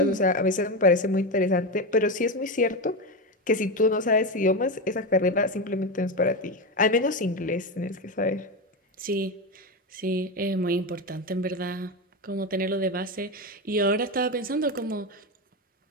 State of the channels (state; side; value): normal; both; correlation 0.15